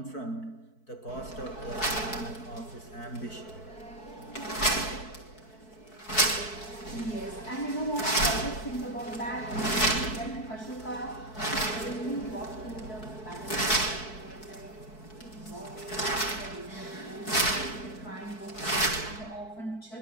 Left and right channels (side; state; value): right; late; 4.6 ms